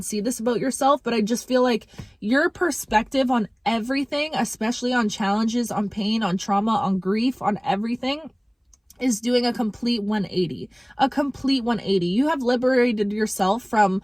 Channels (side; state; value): both; identical; correlation 1.00